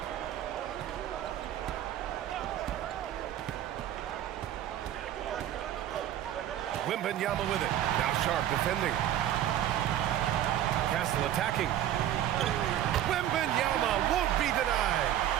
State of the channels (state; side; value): quieter; left; 11.7 dB